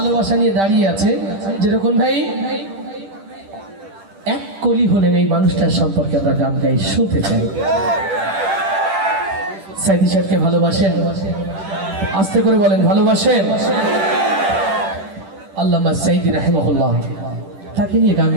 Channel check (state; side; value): late; left; 10 ms